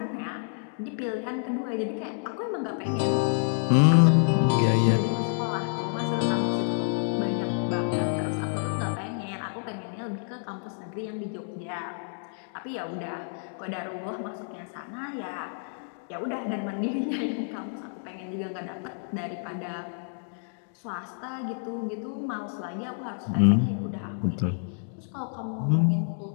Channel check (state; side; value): silent; right; 59 dB below the other